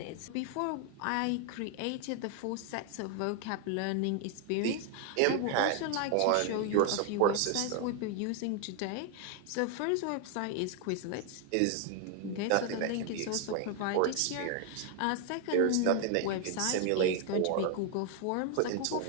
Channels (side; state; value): both; different; correlation 0.00